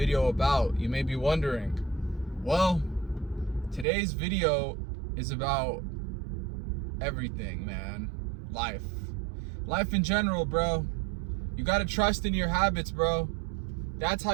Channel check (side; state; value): left; drops out; at 3.9 s